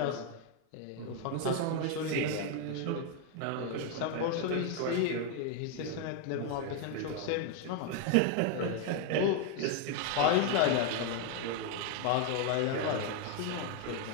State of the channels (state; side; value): different; both; correlation 0.01